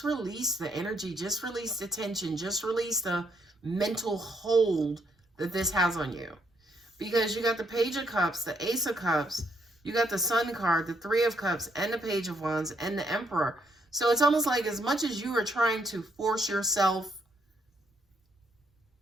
release the energy, just release the tension, just release the mental hold that this has on you. Because you got the Page of Cups, the Ace of Cups, you got the Sun card, the Three of Cups, and the Page of Wands, and the Emperor. So it's almost like as much as you are trying to force yourself,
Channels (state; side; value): normal; both; correlation 0.73